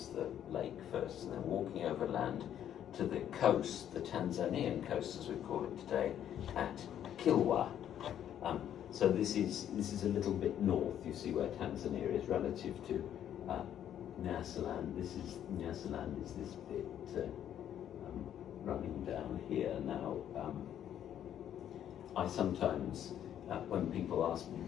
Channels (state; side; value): quieter; right; 10.3 dB